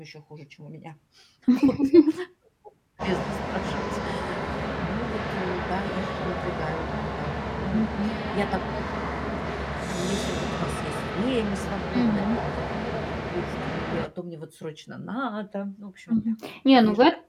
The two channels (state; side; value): identical; both; correlation 1.00